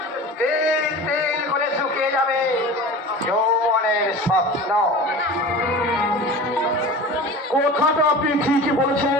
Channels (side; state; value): both; normal; correlation 0.36